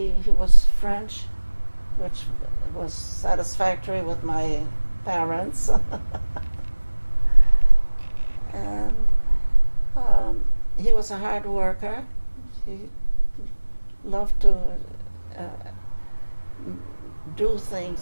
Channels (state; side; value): inverted; both; correlation -1.00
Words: was French, which was satisfactory with my parents. And he was a hard worker. He loved to do